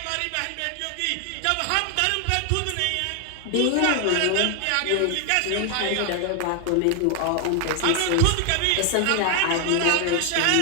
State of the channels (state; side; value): different; both; correlation 0.00